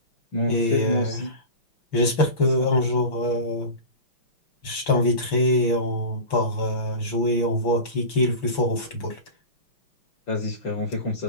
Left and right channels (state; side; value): late; right; 6.1 ms